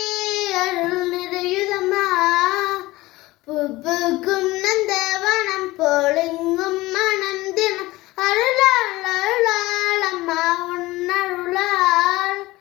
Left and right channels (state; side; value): quieter; right; 19.3 dB